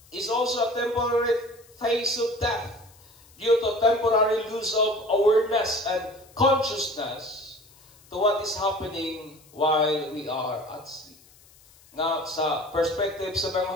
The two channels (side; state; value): left; noise; hiss, 27 dB below the sound